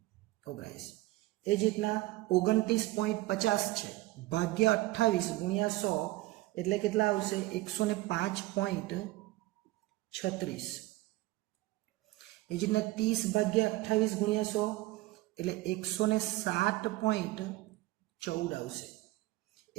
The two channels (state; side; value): quieter; left; 18.7 dB